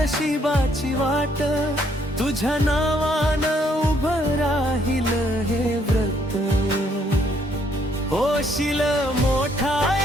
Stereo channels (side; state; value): both; normal; correlation 0.68